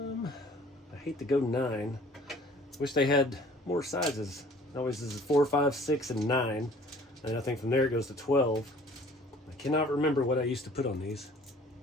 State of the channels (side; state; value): both; normal; correlation 0.52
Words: hate to go 9. Wish they had more sizes. Always is 4, 5, 6, and 9. And I think from there it goes to 12. I cannot remember what I used to put on these.